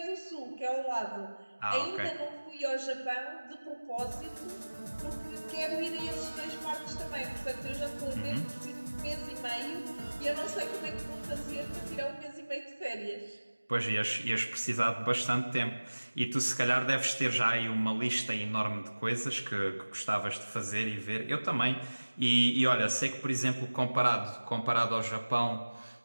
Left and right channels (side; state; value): both; inverted; correlation -1.00